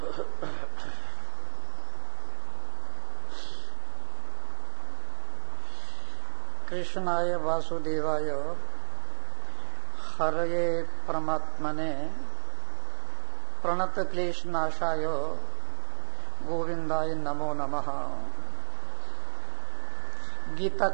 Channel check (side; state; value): left; silent; 58 dB below the other